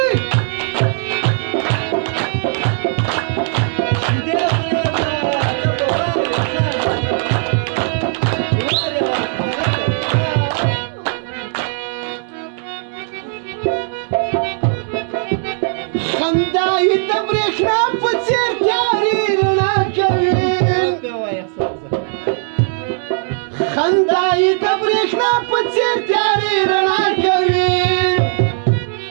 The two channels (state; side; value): silent; left; digital silence